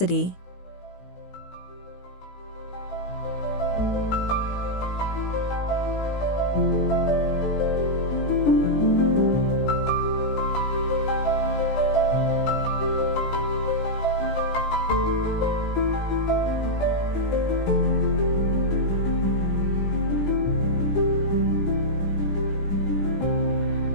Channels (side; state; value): right; late; 16 ms